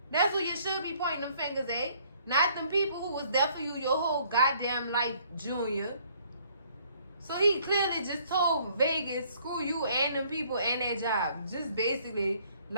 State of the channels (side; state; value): both; inverted; correlation -0.62